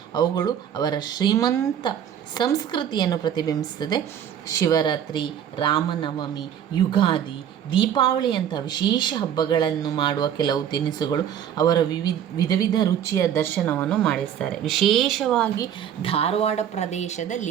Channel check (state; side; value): quieter; left; 9.4 dB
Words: ಅವುಗಳು ಅವರ ಶ್ರೀಮಂತ ಸಂಸ್ಕೃತಿಯನ್ನು ಪ್ರತಿಬಿಂಬಿಸುತ್ತದೆ. ಶಿವರಾತ್ರಿ, ರಾಮನವಮಿ, ಯುಗಾದಿ, ದೀಪಾವಳಿಯಂಥ ವಿಶೇಷ ಹಬ್ಬಗಳನ್ನು ಮಾಡುವ ಕೆಲವು ತಿನಿಸುಗಳು ಅವರ ವಿಧ ವಿಧ ರುಚಿಯ ದರ್ಶನವನ್ನು ಮಾಡಿಸ್ತಾರೆ. ವಿಶೇಷವಾಗಿ ಧಾರವಾಡ